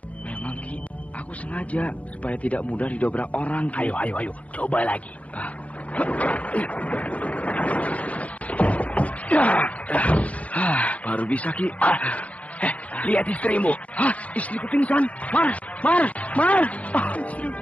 Memang, Ki. Aku sengaja supaya tidak mudah didobrak orang, Ki. Ayo. Coba lagi. Baru bisa, Ki. Lihat istrimu. Istriku pingsan. Mar.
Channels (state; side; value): late; right; 0.066 ms